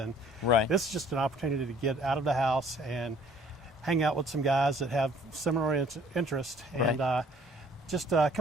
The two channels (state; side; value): normal; both; correlation 0.56